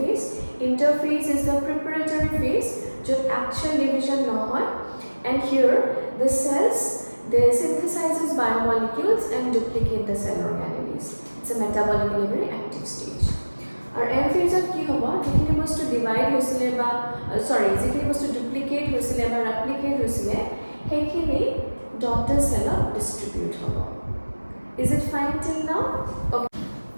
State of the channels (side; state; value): both; inverted; correlation -1.00